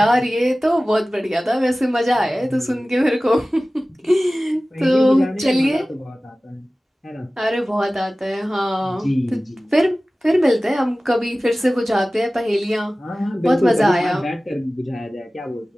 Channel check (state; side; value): normal; both; correlation 0.97